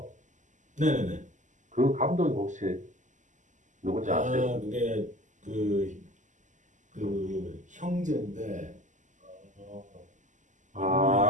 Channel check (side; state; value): left; late; 0.36 ms